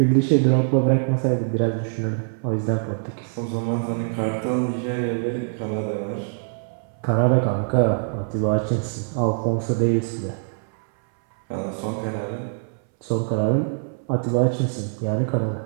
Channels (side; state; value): left; silent; 62 dB below the other